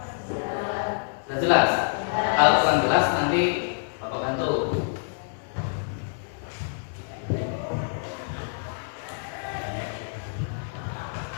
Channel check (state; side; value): silent; right; digital silence